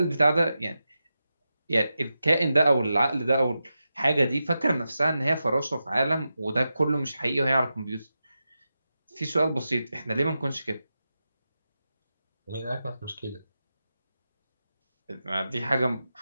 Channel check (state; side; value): inverted; both; correlation -0.91